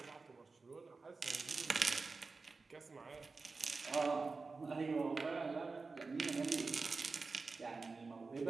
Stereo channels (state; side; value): quieter; left; 4.1 dB